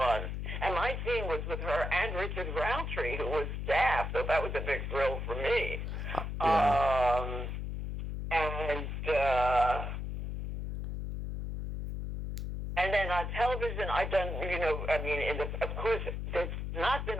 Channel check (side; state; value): left; noise; hum, 4 dB below the sound